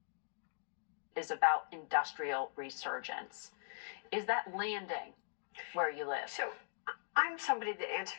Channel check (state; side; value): silent; right; digital silence